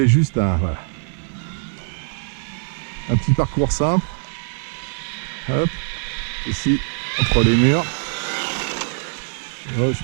juste voilà, un petit parcours simple. Hop, ici, entre les murs. Oh, je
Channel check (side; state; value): left; silent; 57 dB below the other